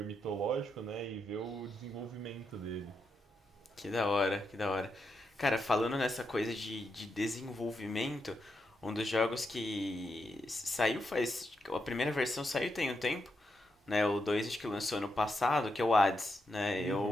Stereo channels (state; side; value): normal; both; correlation 0.84